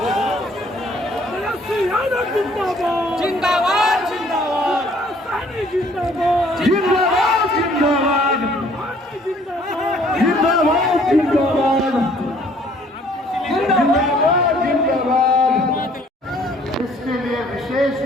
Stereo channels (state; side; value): normal; both; correlation 0.59